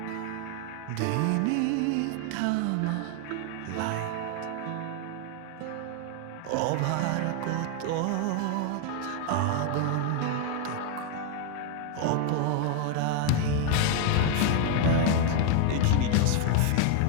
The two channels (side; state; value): both; different; correlation 0.00